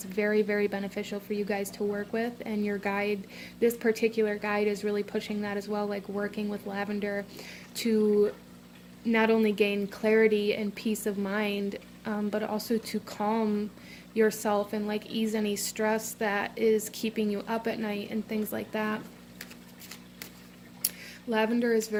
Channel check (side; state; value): both; identical; correlation 1.00